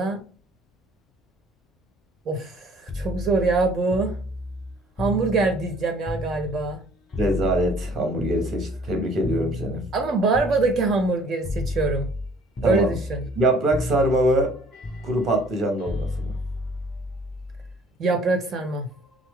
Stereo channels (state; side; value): normal; both; correlation 0.56